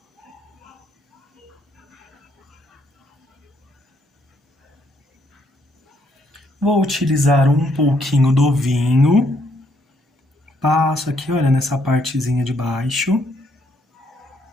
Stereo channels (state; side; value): normal; both; correlation 0.72